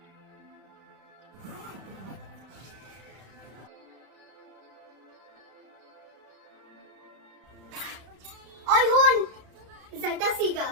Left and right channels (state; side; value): late; left; 32 ms